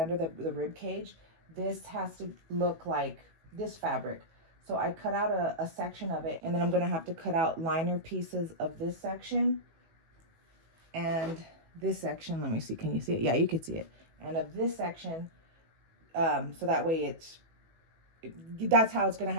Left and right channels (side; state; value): left; late; 18 ms